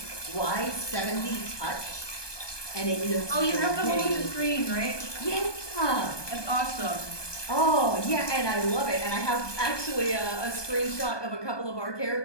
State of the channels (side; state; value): right; late; 1.2 ms